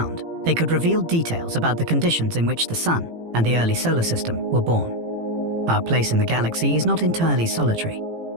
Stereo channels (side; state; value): left; late; 18 ms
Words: they could reveal details about the conditions in which the Sun and the early solar system were born. Our place in the galaxy is not entirely solitary.